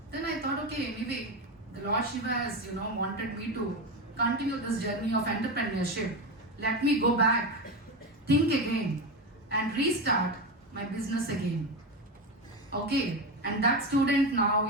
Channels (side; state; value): both; normal; correlation 0.17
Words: Then I thought, okay, anyway, the Lord Shiva has, wanted me to continue this journey of entrepreneurship. Let me go back, think again, and restart my business again. Okay, and that student